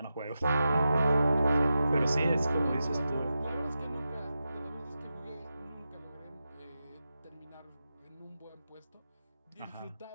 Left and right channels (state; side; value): inverted; both; correlation -0.91